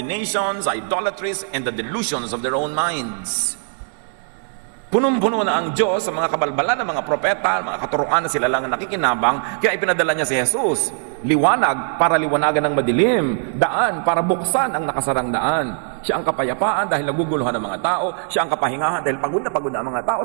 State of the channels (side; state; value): left; silent; digital silence